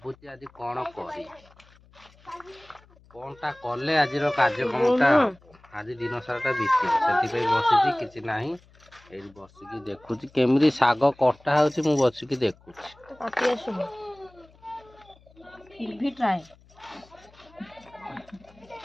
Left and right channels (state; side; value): noise; left; hum, 28 dB below the sound